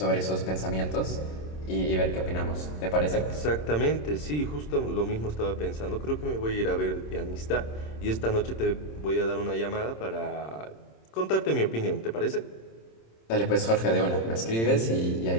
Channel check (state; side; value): late; right; 26 ms